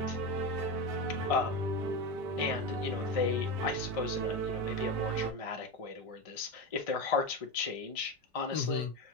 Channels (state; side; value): normal; both; correlation 0.18